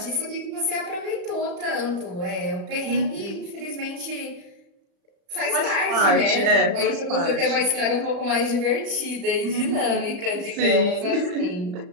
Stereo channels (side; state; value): left; late; 35 ms